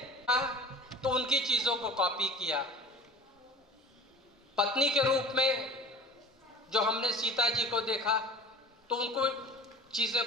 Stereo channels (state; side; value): normal; both; correlation 0.39